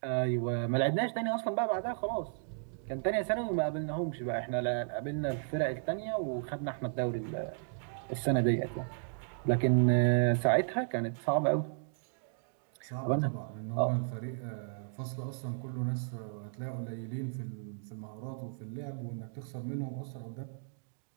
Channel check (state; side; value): silent; left; digital silence